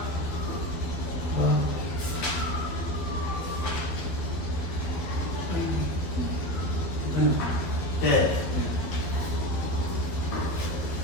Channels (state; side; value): late; right; 12 ms